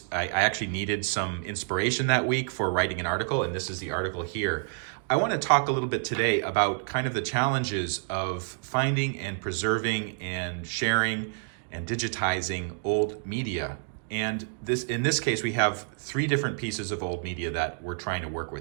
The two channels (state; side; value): silent; left; digital silence